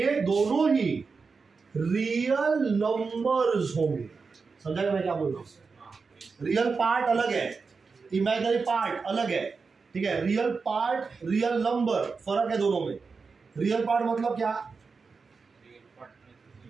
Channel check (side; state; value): left; quieter; 4.8 dB